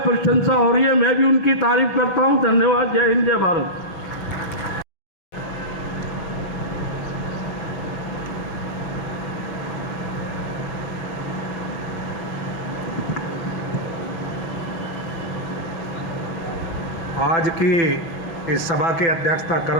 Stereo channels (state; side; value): late; right; 6.0 ms